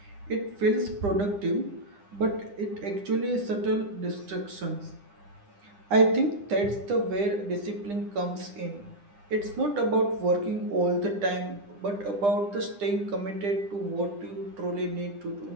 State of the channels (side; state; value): left; late; 9.9 ms